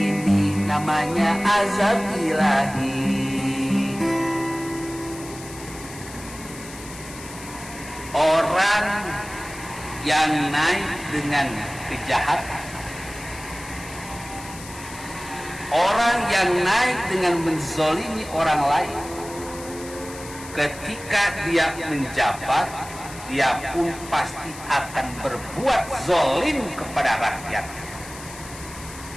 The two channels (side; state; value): left; noise; hiss, 15 dB below the sound